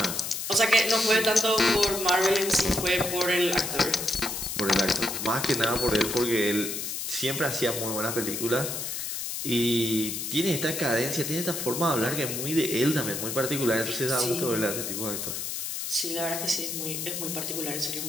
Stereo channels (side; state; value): left; noise; hiss, 4 dB below the sound